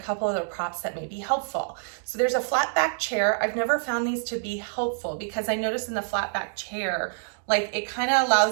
couple other props that may be helpful. So there's a flat back chair. I've never found these to be helpful, because I noticed in the flat back chair, like, it kind of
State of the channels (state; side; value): silent; left; digital silence